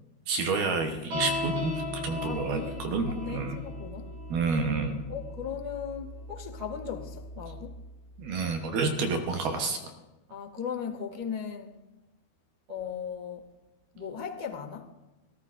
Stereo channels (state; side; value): late; left; 12 ms